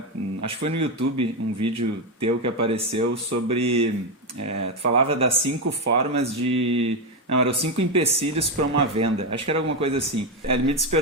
acho que foi no YouTube, um vídeo teu que apareceu sobre... tu falava das 5 formas de... Não, eram 5 empecilhos para uma venda. Acho que era alguma coisa assim. Ele me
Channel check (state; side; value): normal; both; correlation 0.09